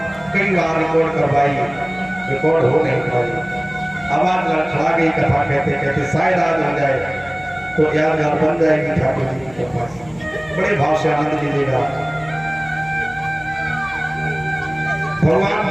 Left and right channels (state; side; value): noise; left; hum, 22 dB below the sound